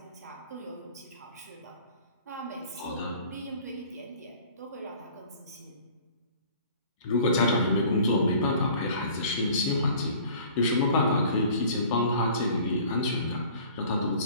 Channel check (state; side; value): inverted; both; correlation -0.49